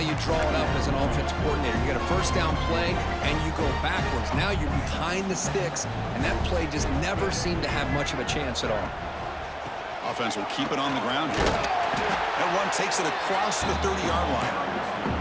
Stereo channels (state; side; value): identical; both; correlation 1.00